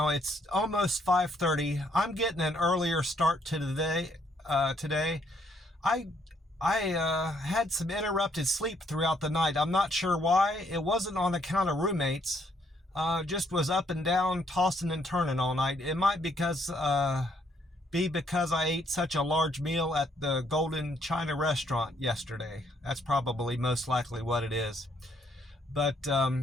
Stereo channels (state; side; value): normal; both; correlation 0.70